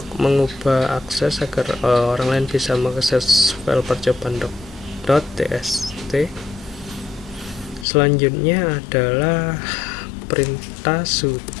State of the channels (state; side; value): drops out; right; at 7.9 s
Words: mengubah akses agar orang lain bisa mengakses file percobaan.txt. Selanjutnya adalah perintah